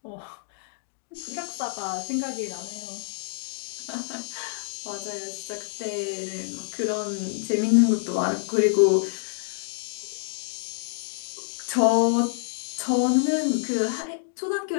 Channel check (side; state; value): right; silent; digital silence